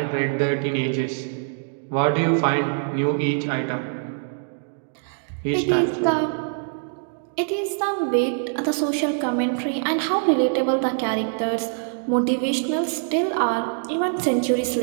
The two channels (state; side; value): silent; left; digital silence